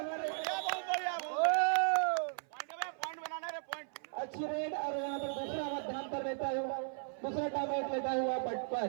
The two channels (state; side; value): silent; left; 54 dB below the other